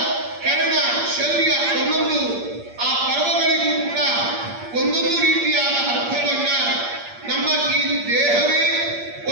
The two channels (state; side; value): late; left; 8.6 ms